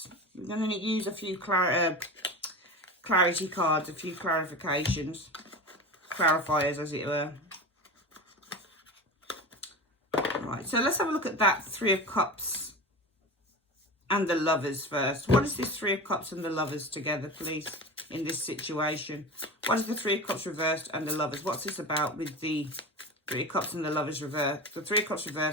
We're going to use a few clarity cards, a few clarifications, clarifiers as it were. Right, so let's have a look at that Three of Cups and the Lovers first. What is this Three of Cups and the Lovers together, please, in this situation? What is the Three of Cups reversed and the Lovers? What's this about with the Three of Cups and the Lovers reversed? The Three of Cups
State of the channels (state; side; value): normal; both; correlation 0.29